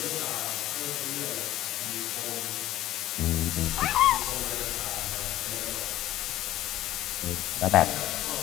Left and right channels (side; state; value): right; quieter; 14.4 dB